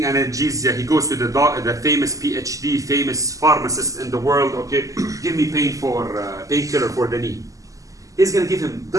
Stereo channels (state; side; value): late; left; 0.16 ms